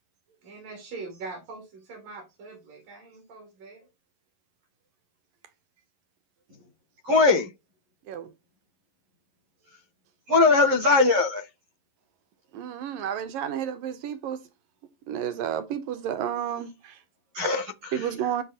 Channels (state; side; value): late; left; 11 ms